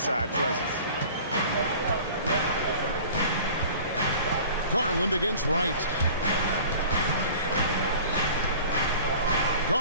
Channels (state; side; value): inverted; both; correlation -0.44